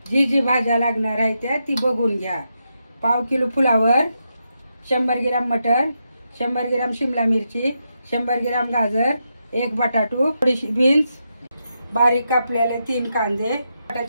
जी भाज्या लागणार आहे त्या ती बघून घ्या। पाव किलो फुलावर, 100 ग्रॅम मटर, 100 ग्रॅम शिमला मिरची, 100 ग्रॅम गाजर, 1 बटाटू, थोडीशी बीन्स, बारीक कापलेले 3 कांदे,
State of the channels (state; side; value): inverted; both; correlation -0.84